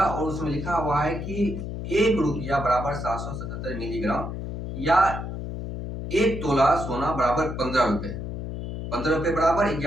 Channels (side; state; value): left; noise; hum, 6 dB below the sound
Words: उसमें लिखा हुआ है कि 1 रुपया बराबर 777 मिलीग्राम, या 1 तोला सोना बराबर 15 रुपए। 15 रुपये बराबर